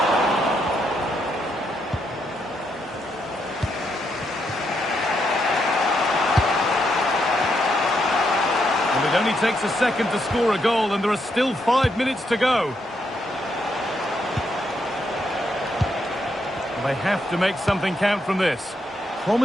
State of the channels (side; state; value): both; normal; correlation 0.79